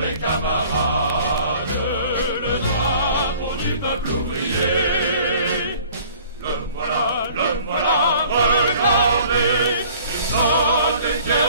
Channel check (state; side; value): inverted; both; correlation -0.52